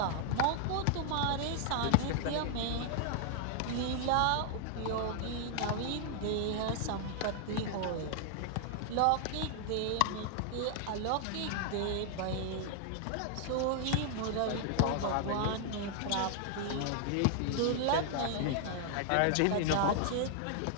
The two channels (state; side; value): different; both; correlation 0.00